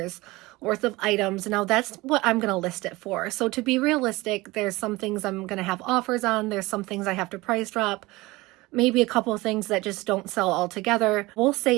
worth of items. Now that's what I'm going to list it for. So to be realistic, there's some things I'm going to have offers on. There's some things I have to price drop. Maybe a couple of things that just don't sell altogether. We'll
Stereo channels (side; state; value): left; quieter; 21.1 dB